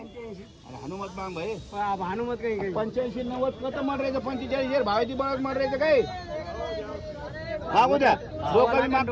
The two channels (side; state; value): both; identical; correlation 1.00